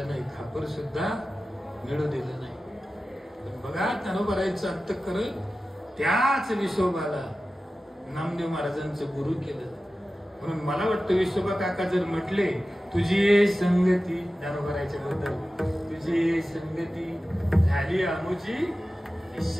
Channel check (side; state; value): both; normal; correlation 0.95